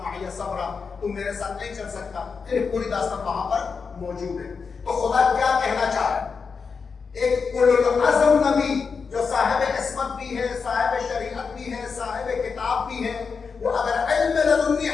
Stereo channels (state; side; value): quieter; right; 5.4 dB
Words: صبرا، تم میرے ساتھ نہیں چل سکتا. پھر پوری داستان وہاں پر موجود ہے. تو خدا کیا کہنا چاہ رہا ہے؟ ایک اولو العزم نبی جو صاحب عصمت بھی ہے، صاحب شریعت بھی ہے، صاحب کتاب بھی ہے، وہ اگر علم لدنی